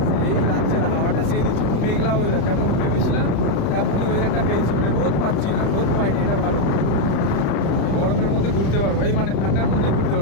এই রাজ্যের হাওয়াটা সেই দিচ্ছে, মেঘলা ওয়েদার যেমন ভেবেছিলাম তেমনই ওয়েদারটা পেয়েছি। মানে রোদ পাচ্ছি না, রোদ পাইনি, এটা ভালো। গরমের মধ্যে ঘুরতে পারবো, এই মানে ঠান্ডার মধ্যে ঘুরতে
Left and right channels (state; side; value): late; right; 35 ms